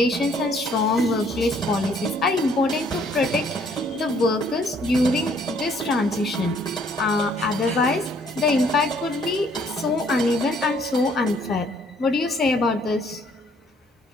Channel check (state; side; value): normal; both; correlation 0.63